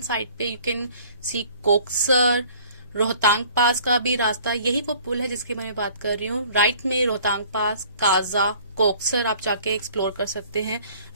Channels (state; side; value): inverted; both; correlation -0.53